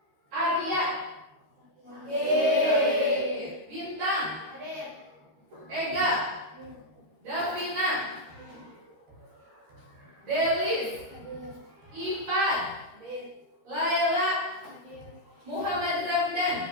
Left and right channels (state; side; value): late; left; 13 ms